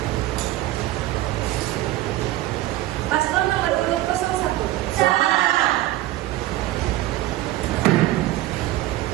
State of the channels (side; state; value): left; quieter; 15.9 dB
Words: Paslon nomor urut 01. Salah.